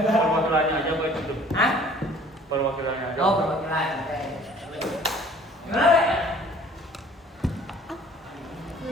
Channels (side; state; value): both; normal; correlation 0.52